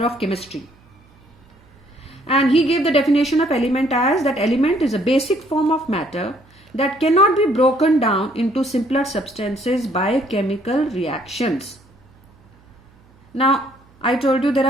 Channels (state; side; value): noise; right; hum, 29 dB below the sound